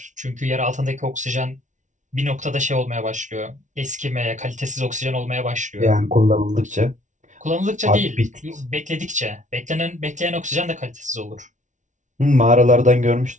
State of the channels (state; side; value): late; left; 0.36 ms